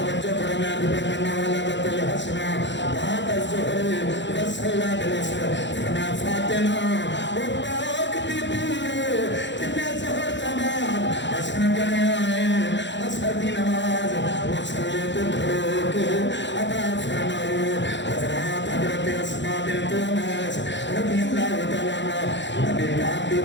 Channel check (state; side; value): late; right; 0.53 ms